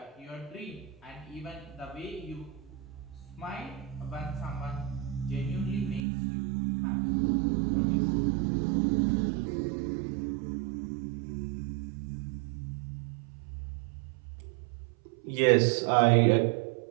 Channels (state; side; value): drops out; left; at 6.0 s